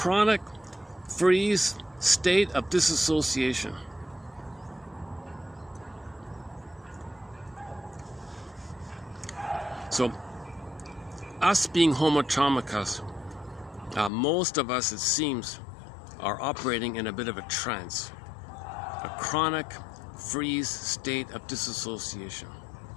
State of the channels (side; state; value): right; drops out; at 14.1 s